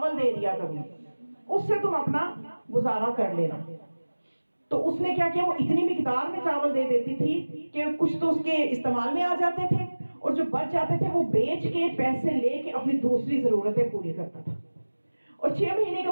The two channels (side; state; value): both; inverted; correlation -1.00